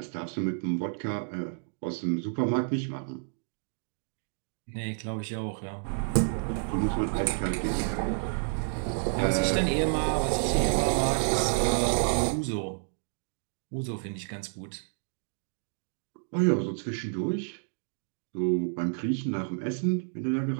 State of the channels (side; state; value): left; silent; digital silence